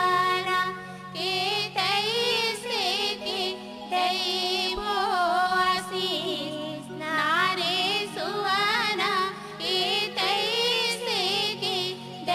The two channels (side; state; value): both; identical; correlation 1.00